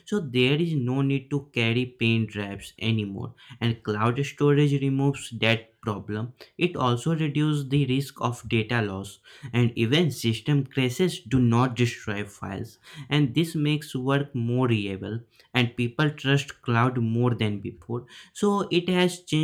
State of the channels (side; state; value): both; identical; correlation 1.00